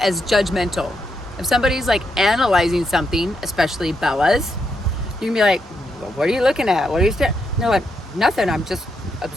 judgmental. If somebody's analyzing something, especially Bella's, you can be like, well, what are you looking at? What are you staring? No, like, nothing. I'm just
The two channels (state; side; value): normal; both; correlation 0.81